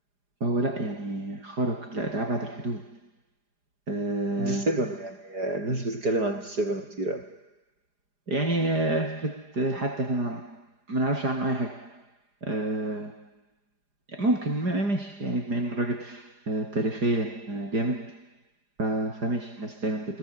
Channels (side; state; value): left; late; 4.9 ms